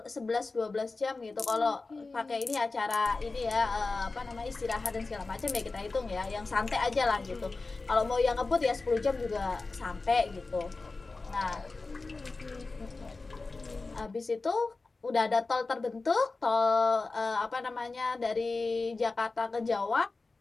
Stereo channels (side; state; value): right; quieter; 3.7 dB